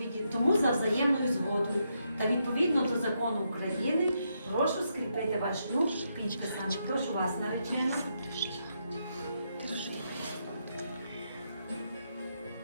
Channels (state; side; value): inverted; both; correlation -0.80